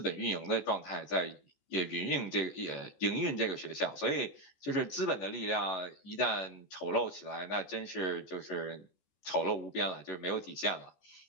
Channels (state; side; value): late; right; 14 ms